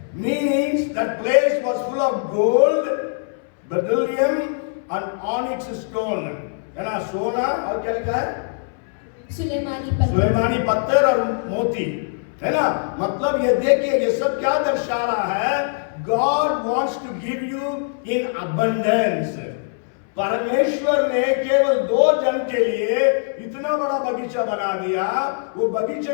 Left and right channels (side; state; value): right; silent; 61 dB below the other